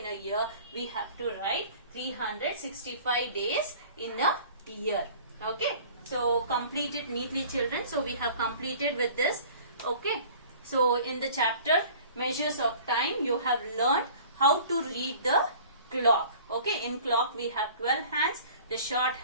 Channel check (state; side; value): inverted; both; correlation -0.47